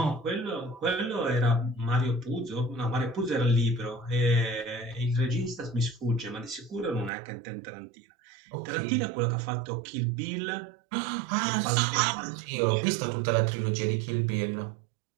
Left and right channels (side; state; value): left; drops out; at 7.1 s